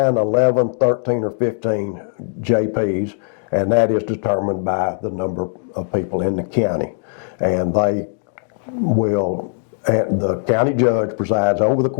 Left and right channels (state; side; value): silent; right; digital silence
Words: 11, 13, or 15 JPs, and that is determined by the number of people in the county. And they will, and the county judge presides over the